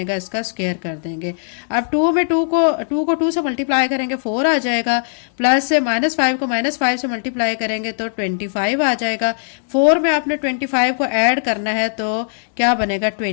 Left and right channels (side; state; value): right; silent; digital silence